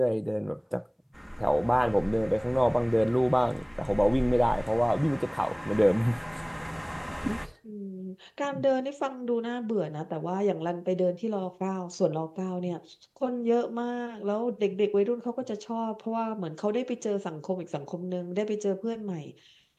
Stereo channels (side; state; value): both; identical; correlation 1.00